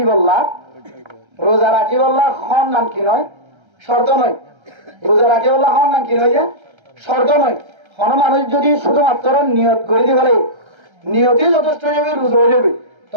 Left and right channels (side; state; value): left; late; 1.3 ms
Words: বললা খন নাম কি নয় শর্ত নয় রোজা রাখি বললা খন নাম কি নয় যে শর্ত নয় কোন মানুষ যদি শুধুমাত্র নিয়ত করে দিয়ে ফেলে নিয়তই যথেষ্ট হয়ে যাবে রোজা হয়ে যাবে